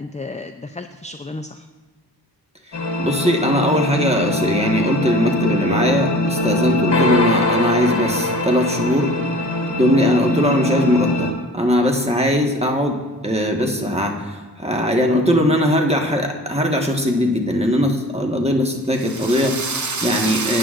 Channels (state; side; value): normal; both; correlation 0.44